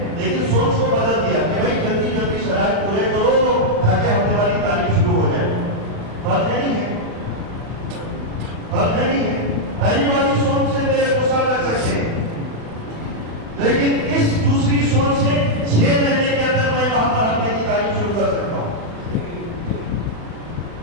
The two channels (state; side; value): late; left; 36 ms